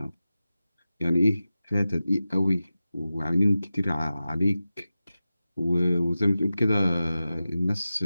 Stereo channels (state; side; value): inverted; both; correlation -0.95